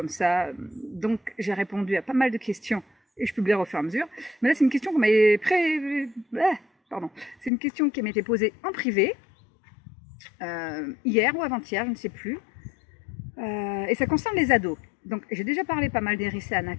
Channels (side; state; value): right; drops out; at 7.5 s